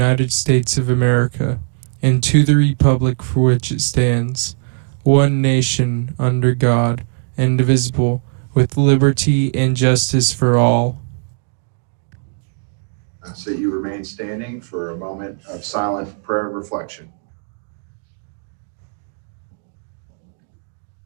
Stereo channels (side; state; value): left; silent; digital silence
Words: States of America and to the republic for which it stands, one nation under God, indivisible, with liberty and justice for all. So you remain standing for a moment of silent prayer and reflection.